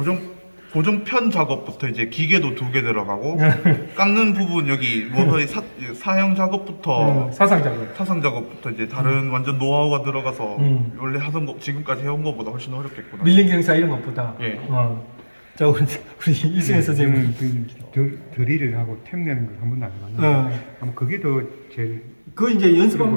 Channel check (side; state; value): both; inverted; correlation -1.00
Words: 고정편 작업부터 이제 기계도 2개 들어가고 깎는 부분 여기 모서리 사형 작업부터 사상 작업. 사상 작업부터 이제 다른 완전 노하우가 들어가서 원래 하던 거 지금까지 해온 거보다 훨씬 어렵겠구나. 밀린 경사 이런 것보다. 예. 자, 우리 이승현 선생님은 드릴을 하고 템 내는 걸 한 번도 안 해봤는데 아마 그게 더 제일 그거 이제